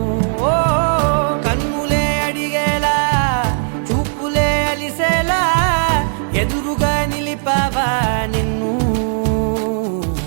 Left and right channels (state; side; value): silent; left; digital silence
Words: ఓ కన్నులే అడిగేలా చూపులే అలిసేలా ఎదురుగా నిలిపావా నిన్ను